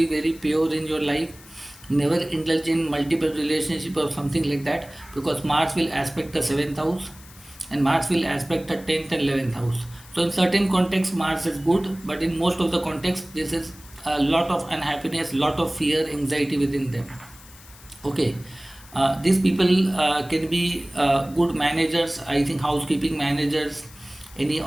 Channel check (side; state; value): left; noise; hiss, 21 dB below the sound